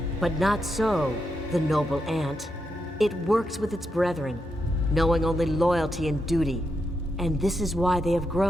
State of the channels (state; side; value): normal; both; correlation 0.84